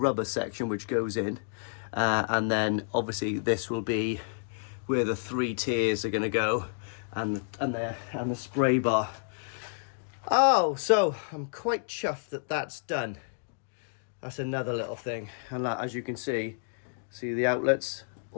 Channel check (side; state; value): right; silent; digital silence